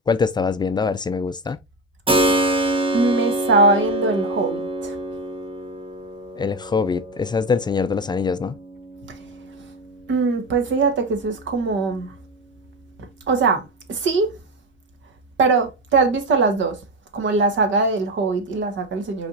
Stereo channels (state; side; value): normal; both; correlation 0.18